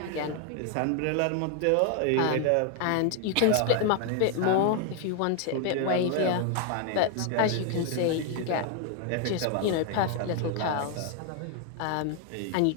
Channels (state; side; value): different; both; correlation 0.01